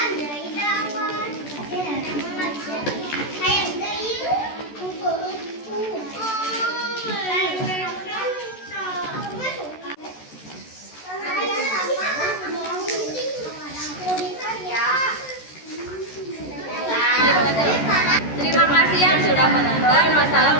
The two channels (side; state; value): right; late; 14 ms